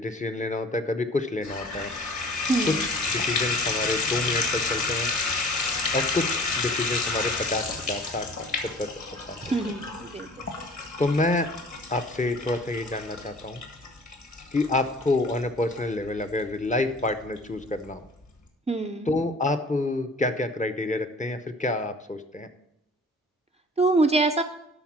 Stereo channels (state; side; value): normal; both; correlation 0.48